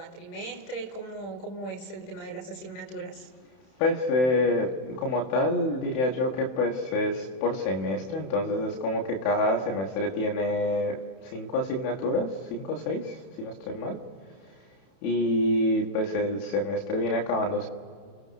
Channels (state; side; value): late; right; 31 ms